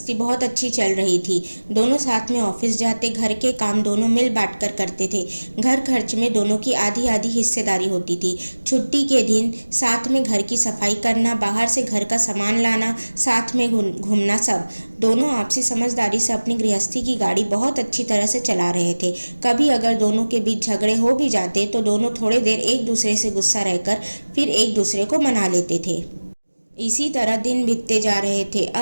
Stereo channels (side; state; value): both; inverted; correlation -1.00